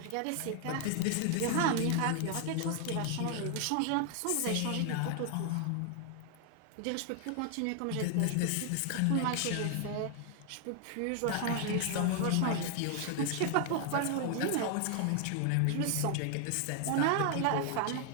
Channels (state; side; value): different; both; correlation 0.00